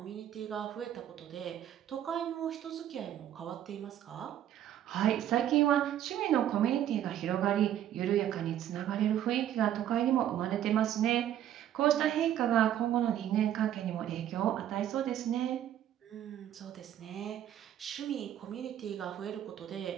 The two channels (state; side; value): quieter; left; 11.1 dB